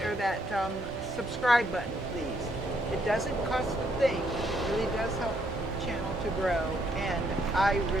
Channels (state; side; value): normal; both; correlation 0.72